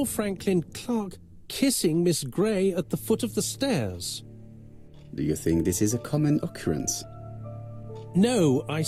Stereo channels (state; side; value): identical; both; correlation 1.00